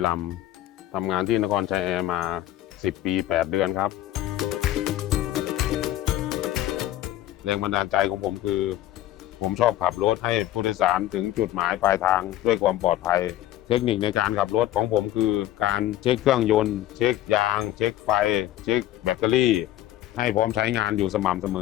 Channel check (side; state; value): right; quieter; 13.8 dB